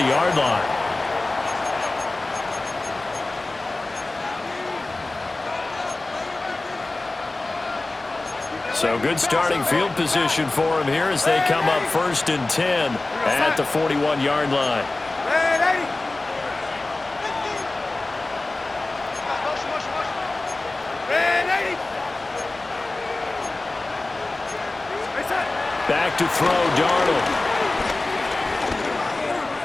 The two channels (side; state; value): right; quieter; 3.0 dB